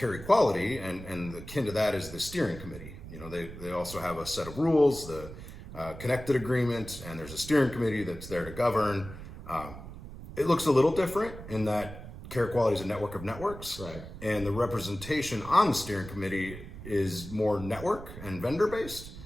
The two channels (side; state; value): right; noise; rumble, 13 dB below the sound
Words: equality, and akin to that is the steering committee. You know, they also have a set of rules, the connected agreement, and there's a steering committee that's there to govern. It looks a little different in that care equality is a network of networks, right? And the representation on the steering committee is more network and vendor based,